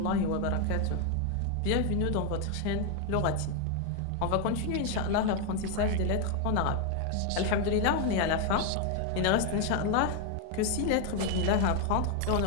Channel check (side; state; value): both; different; correlation 0.01